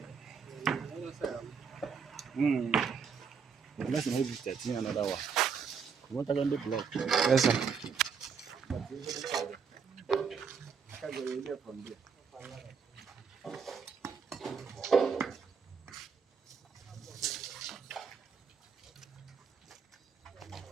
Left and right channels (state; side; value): quieter; left; 6.1 dB